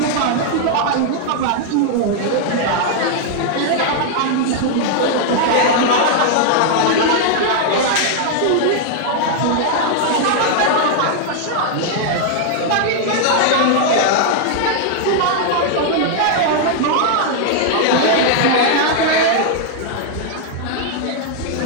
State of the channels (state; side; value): different; both; correlation 0.00